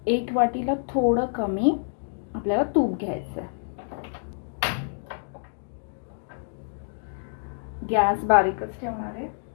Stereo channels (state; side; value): silent; right; digital silence